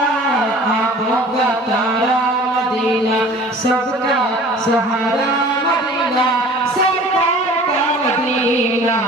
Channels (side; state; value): both; normal; correlation 0.45